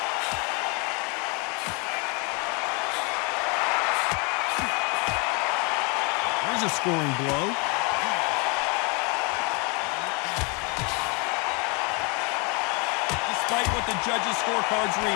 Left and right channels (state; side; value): quieter; right; 32.0 dB